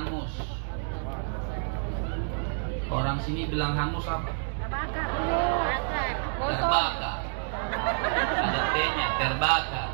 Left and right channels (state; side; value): silent; left; 59 dB below the other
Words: Orang sini bilang hangus apa? Terbakar. Ada T-nya, terbakar.